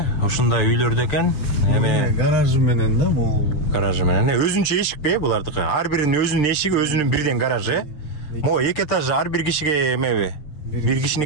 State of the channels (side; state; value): right; late; 6.7 ms